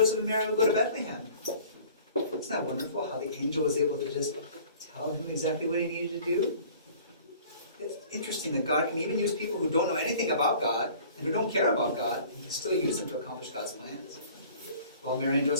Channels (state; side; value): inverted; both; correlation -0.49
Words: and Mary would go to Bethlehem? Isn't that wonderful how the angel was able to just tell him exactly what he needed to do? It's interesting that God can even use people who don't know anything about God and who don't care about God, and He can still use them to accomplish God's plans. Well, Mary and